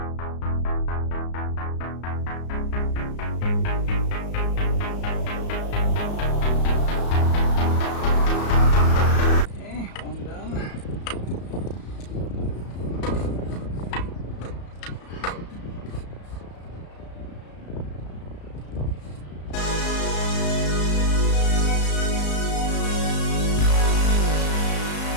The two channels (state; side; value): late; right; 34 ms